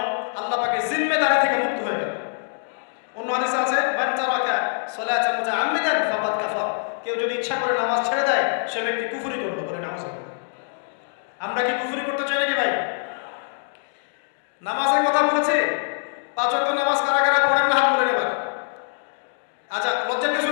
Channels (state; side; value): silent; right; 63 dB below the other